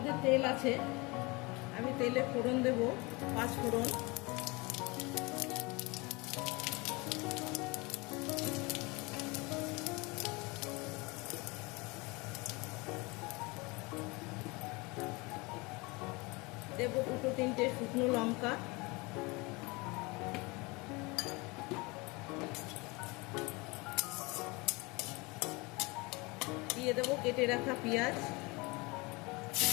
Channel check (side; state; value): right; quieter; 25.8 dB